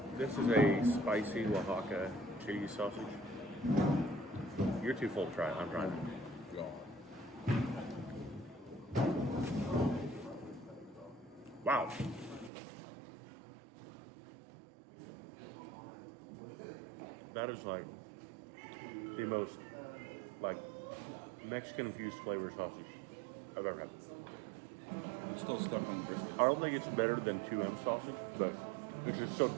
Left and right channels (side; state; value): left; drops out; at 12.5 s